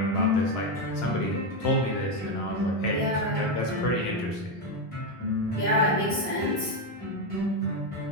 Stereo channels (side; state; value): both; normal; correlation 0.08